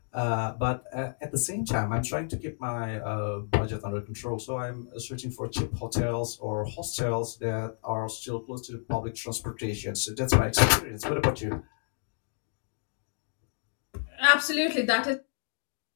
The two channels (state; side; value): silent; right; digital silence